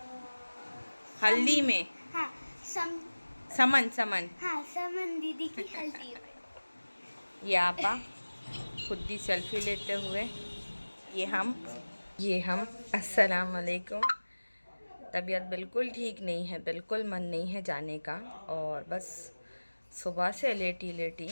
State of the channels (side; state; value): both; inverted; correlation -1.00